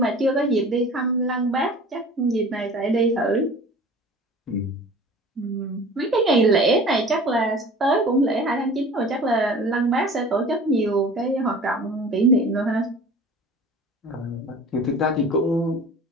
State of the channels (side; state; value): both; normal; correlation 0.42